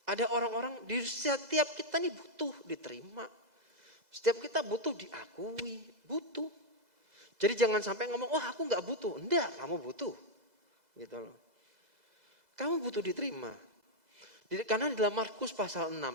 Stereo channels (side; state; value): left; late; 2.0 ms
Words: Ada orang-orang di setiap kita nih butuh diterima. Setiap kita butuh diakui, butuh. Jadi jangan sampai ngomong, aku nggak butuh. Enggak, kamu butuh. Gitu loh. Kamu butuh diterima. Karena di dalam Markus pasal